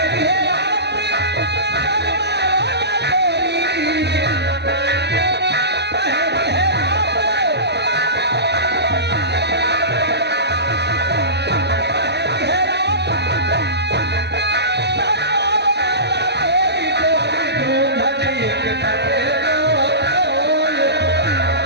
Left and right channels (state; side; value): late; left; 0.50 ms